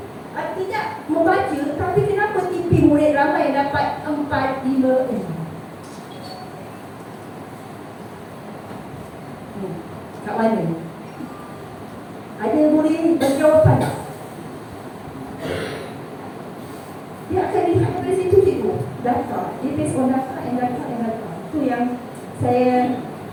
tidak membaca, tapi kenapa tipi murid ramai yang dapat 4, 5, 6? Kat mana? Ada murid bagi jawapan tak? Dia akan lihat dari situ cikgu. Data. Dia based on data and data and data. Itu yang saya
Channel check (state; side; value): identical; both; correlation 1.00